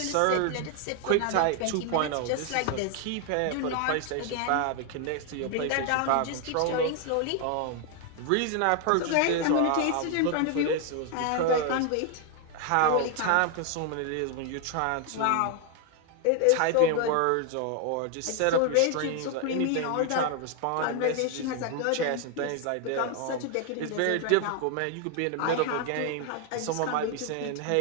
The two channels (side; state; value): both; different; correlation 0.00